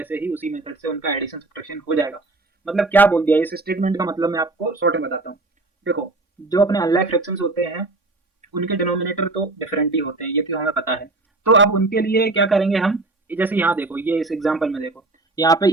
ही उसी मेथड से उनका एडिशन सब्ट्रैक्शन हो जाएगा। मतलब क्या बोल दिया इस स्टेटमेंट का, मतलब मैं आपको शॉर्ट में बताता हूँ। देखो, जो अपने अनलाइक फ्रैक्शंस होते हैं उनके डिनोमिनेटर तो डिफरेंट ही होते हैं, ये तो हमें पता है। तो अब उनके लिए क्या करेंगे हम, जैसे यहाँ देखो, ये इस एग्जाम्पल में देखो, यहाँ पे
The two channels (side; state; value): left; quieter; 3.2 dB